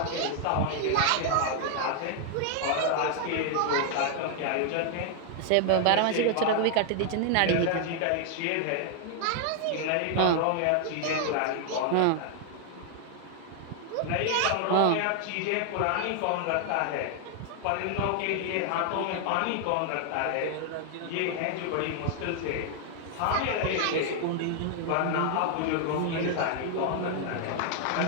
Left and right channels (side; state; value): both; different; correlation 0.00